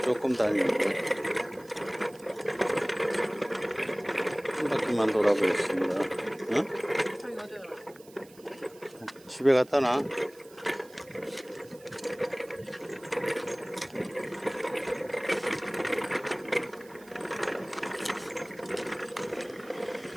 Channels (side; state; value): right; noise; hiss, 24 dB below the sound